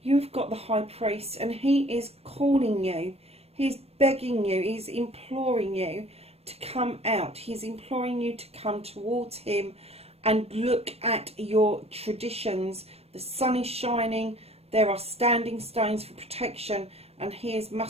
You've got the High Priest and he is calling you. He's begging you, he's imploring you to come out. He's imploring you to come towards him and look at your traditions. The sun is shining, there are standing stones for protection, and he is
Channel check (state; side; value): late; left; 0.29 ms